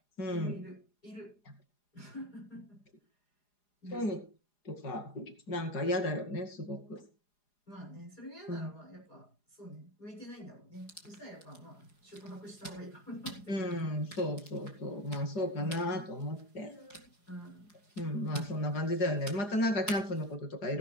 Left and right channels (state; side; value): late; right; 4.9 ms